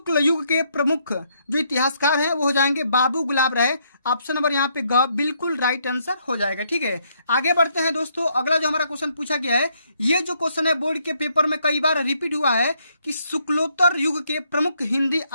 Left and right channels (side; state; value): both; inverted; correlation -0.72